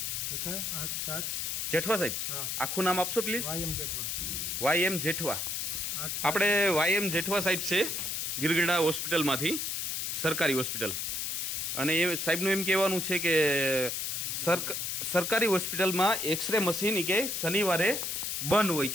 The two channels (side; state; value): left; noise; hiss, 2 dB below the sound